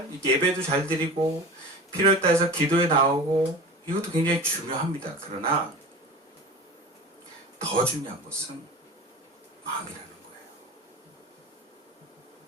예배도 잘 드리고 필요에 따라서 기도에 나오고 이것도 굉장히 중요합니다. 그러나 더 중요한 것은 마음이라는 거예요.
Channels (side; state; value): both; normal; correlation 0.34